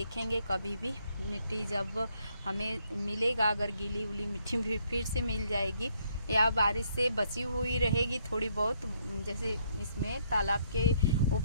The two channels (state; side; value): inverted; both; correlation -0.71